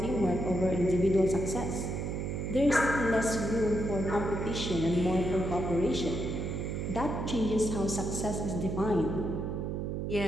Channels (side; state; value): right; noise; hum, 2 dB below the sound